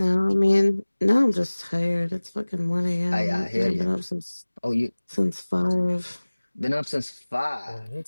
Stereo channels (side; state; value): both; inverted; correlation -1.00